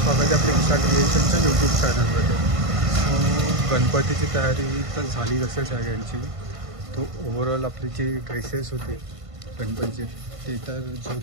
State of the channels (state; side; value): late; left; 1.5 ms